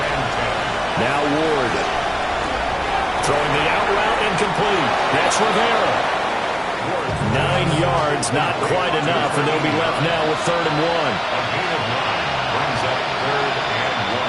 Now Ward. Throwing the out route incomplete. That's Rivera. 9 yards, not quite enough, and they'll be left now with 3rd and 1.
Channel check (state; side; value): identical; both; correlation 1.00